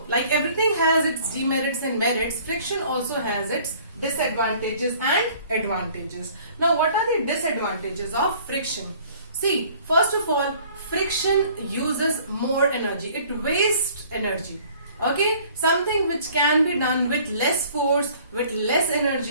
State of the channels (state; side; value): inverted; both; correlation -0.54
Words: like everything has its demerits and merits, friction also has its disadvantages and advantages. Now, what are the disadvantages of friction? See, first of all, friction uses more energy. It wastes energy. Okay, something which can be done with less force, with less